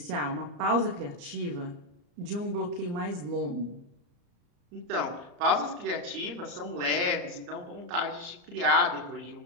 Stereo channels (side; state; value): left; late; 34 ms